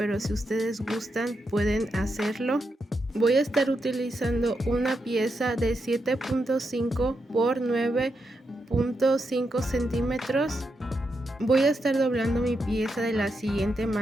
si ustedes gustan pueden hacerlo. Voy a estar utilizando una pieza de 7.5 por 9.5 centímetros. Voy a estar doblando mi pieza de la siguiente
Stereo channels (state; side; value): normal; both; correlation 0.84